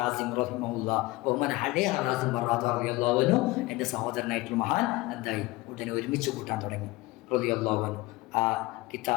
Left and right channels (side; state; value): right; quieter; 20.6 dB